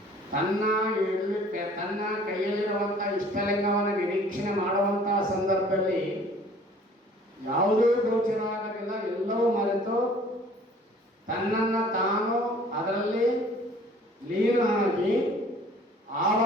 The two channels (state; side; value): normal; both; correlation 0.52